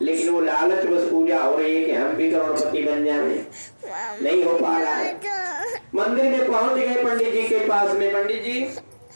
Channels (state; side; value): inverted; both; correlation -1.00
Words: लेकिन वो लालच बस पूजा हो रही है कि हम भी करोड़पति बन जाए, नहीं हो पा रहा है। मंदिर में पहुंच गए पंडित जी के पास में, पंडित जी